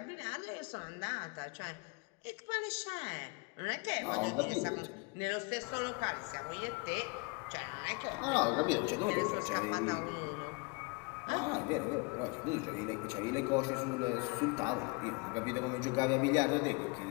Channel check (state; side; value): quieter; right; 29.9 dB